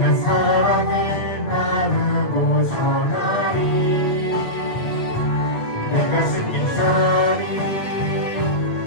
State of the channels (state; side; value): late; right; 8.6 ms